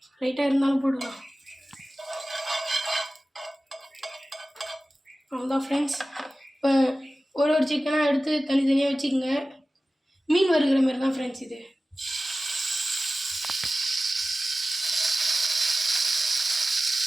லைட்டாக இருந்தாலும் போடுவோம். அவ்வளோதான் ஃப்ரெண்ட்ஸ். இப்போ ஒரு சிக்கனாக எடுத்து தனித்தனியாக வச்சுக்கோங்க. மீன் வறுக்கிற மாதிரி தான் ஃப்ரெண்ட்ஸ் இது.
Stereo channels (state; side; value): normal; both; correlation 0.95